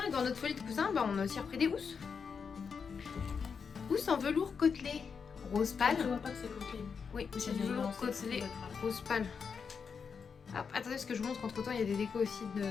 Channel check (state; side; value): quieter; right; 6.0 dB